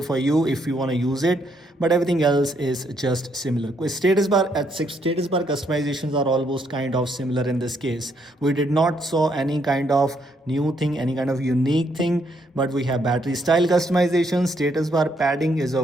for you if you want to use it, but everything else is just similar. With status bar status bar customizations are almost kind of similar in this case. We did not saw any kind of new thing, any kind of unique thing, but we have battery style customization. Status bar padding is a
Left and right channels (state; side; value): normal; both; correlation 0.73